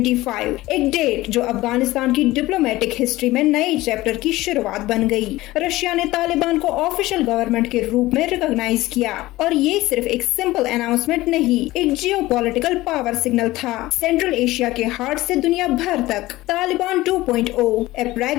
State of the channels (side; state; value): right; quieter; 18.0 dB